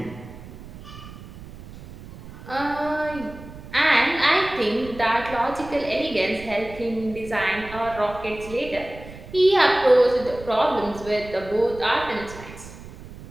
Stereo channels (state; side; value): noise; right; rumble, 15 dB below the sound